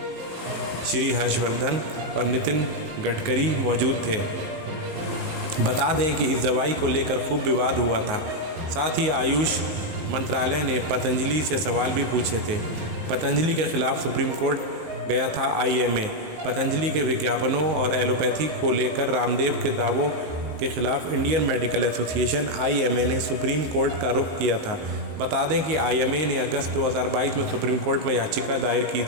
श्री हर्षवर्धन और नितिन गडकरी मौजूद थे। बता दें कि इस दवाई को लेकर खूब विवाद हुआ था। साथ ही आयुष मंत्रालय ने पतंजलि से सवाल भी पूछे थे। पतंजलि के खिलाफ सुप्रीम कोर्ट गया था IMA। पतंजलि के विज्ञापनों और एलोपैथी को लेकर रामदेव के दावों के खिलाफ इंडियन मेडिकल एसोसिएशन IMA ने सुप्रीम कोर्ट का रुख किया था। बता दें कि IMA ने अगस्त 2022 में सुप्रीम कोर्ट में याचिका दायर की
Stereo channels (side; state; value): left; late; 18 ms